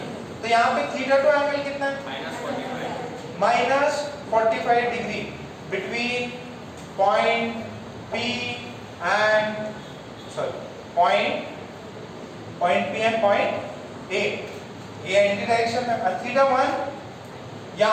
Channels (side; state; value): both; identical; correlation 1.00